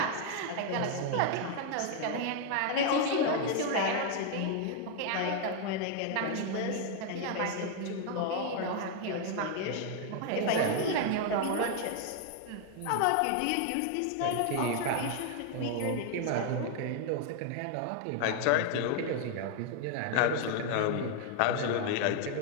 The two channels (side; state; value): both; different; correlation 0.00